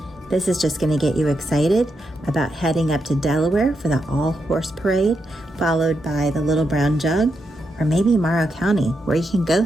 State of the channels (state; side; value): normal; both; correlation 0.83